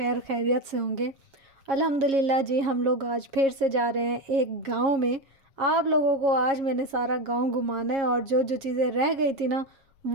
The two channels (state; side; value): late; left; 7.3 ms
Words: خیریت سے ہوں گے۔ الحمدللہ جی، ہم لوگ آج پھر سے جا رہے ہیں ایک گاؤں میں۔ آپ لوگوں کو آج میں نے سارا گاؤں گھمانا ہے اور جو جو چیزیں رہ گئی تھی نا،